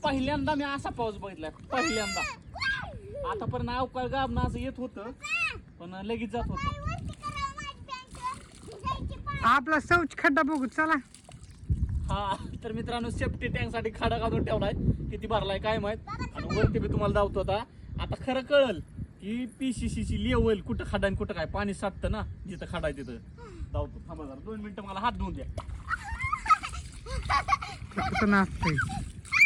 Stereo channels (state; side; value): identical; both; correlation 1.00